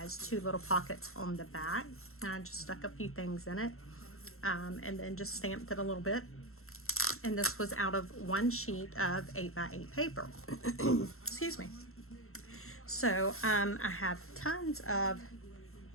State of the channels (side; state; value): right; late; 0.62 ms